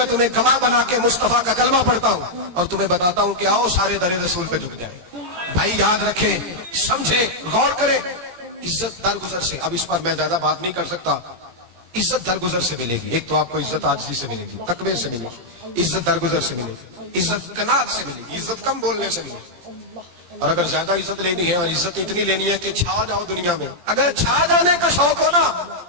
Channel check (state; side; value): late; left; 17 ms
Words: تمہیں گواہ بنا کے مصطفیٰ کا کلمہ پڑھتا ہوں اور تمہیں بتاتا ہوں کہ آؤ سارے در رسول پہ جھک جائیں. بھائی یاد رکھیں, سمجھیں, غور کریں. عزت درگزر سے, اب اس پر میں زیادہ بات نہیں کر سکتا. عزت درگزر سے ملے گی. ایک تو آپ کو عزت عاجزی سے ملے گی, تقوی سے ملے گی, عزت درگزر سے ملے گی, عزت قناعت سے ملے گی, عزت کم بولنے سے ملے گی. اور اگر زیادہ عزت لینی ہے اور عزت اتنی لینی ہے کہ چھا جاؤ دنیا میں, اگر چھا جانے کا شوق ہو نا